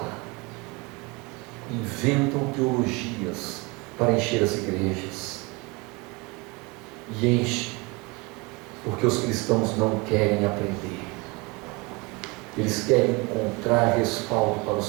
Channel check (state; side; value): quieter; left; 26.5 dB